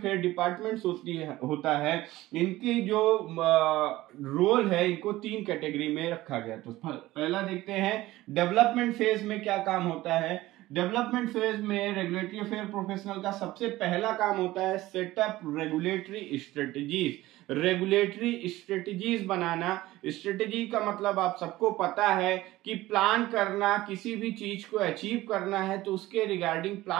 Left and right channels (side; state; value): left; quieter; 17.2 dB